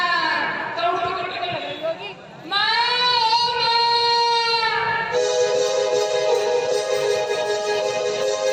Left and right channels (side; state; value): both; identical; correlation 1.00